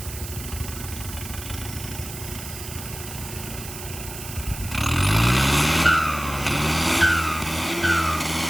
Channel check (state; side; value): noise; right; hiss, 11 dB below the sound